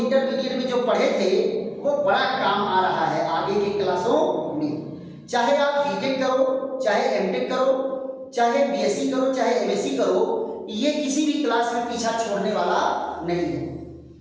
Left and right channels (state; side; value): identical; both; correlation 1.00